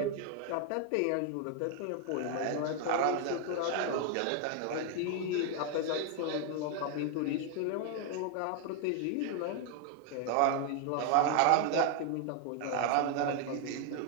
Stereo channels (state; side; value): different; both; correlation 0.00